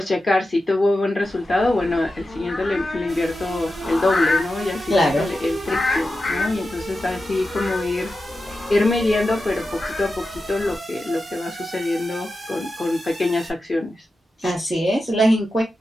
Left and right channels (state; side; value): normal; both; correlation 0.91